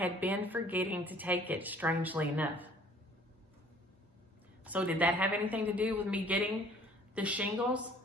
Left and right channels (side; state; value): both; normal; correlation 0.54